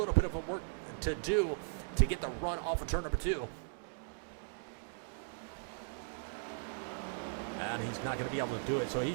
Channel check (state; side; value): silent; left; digital silence